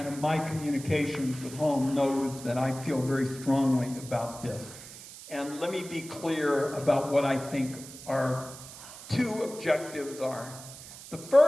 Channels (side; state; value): right; noise; hiss, 15 dB below the sound